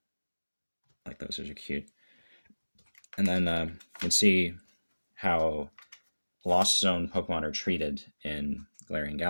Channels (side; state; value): both; inverted; correlation -1.00